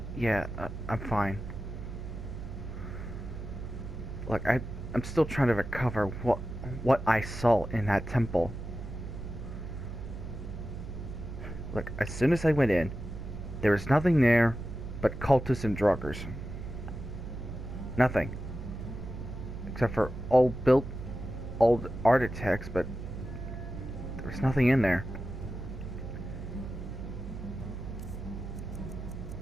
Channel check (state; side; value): noise; right; hum, 9 dB below the sound